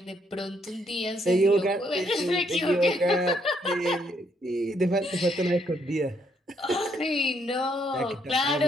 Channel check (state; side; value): normal; both; correlation 0.72